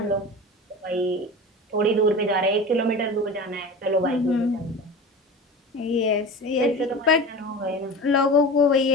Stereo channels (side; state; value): both; normal; correlation 0.32